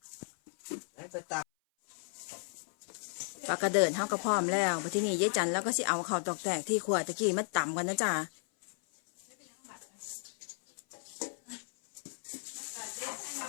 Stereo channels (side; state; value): right; silent; 55 dB below the other